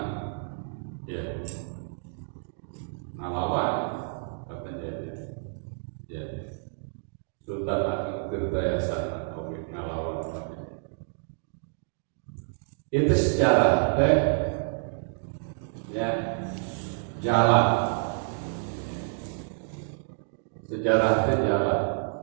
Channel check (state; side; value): silent; left; digital silence